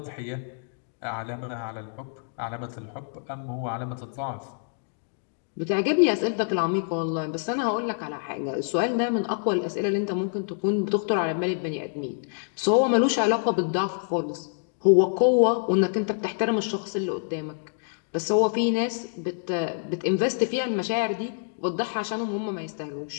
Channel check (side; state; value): right; silent; digital silence